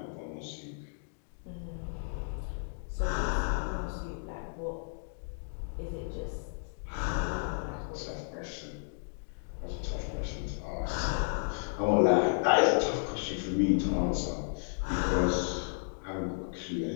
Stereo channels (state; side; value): silent; right; digital silence